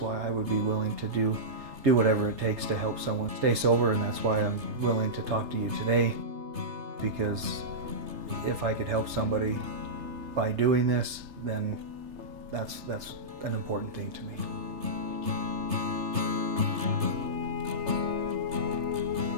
I would be willing to do whatever it takes to help someone stay sober, and that's why I'm willing to talk to you today, because if I could help somebody by doing this, then that's an important thing to me.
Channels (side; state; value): left; late; 3.3 ms